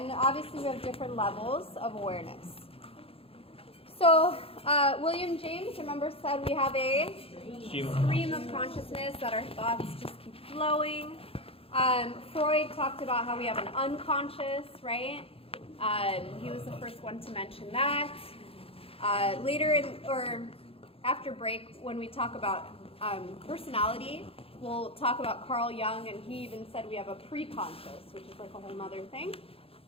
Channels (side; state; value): right; late; 0.27 ms